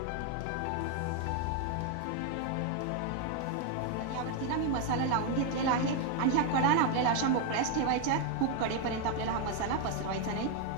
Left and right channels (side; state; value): both; different; correlation 0.01